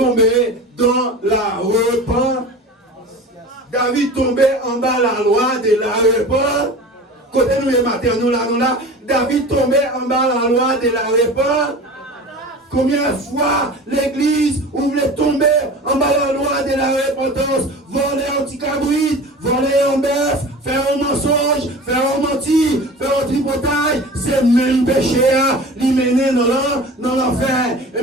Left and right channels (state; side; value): normal; both; correlation 0.36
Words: dans la repentance. David tombé en bas la loi de la repentance. Côté nous les matin, nous là, David tombé en bas la loi de la repentance. Combien de fois l'église voulait tomber en bas la loi de la repentance, voler un petit cabrit, voler un bœuf, faire un mensonge, faire un menti, faire un tripotage, c'est le même péché à l'y mener dans l'enfer. Et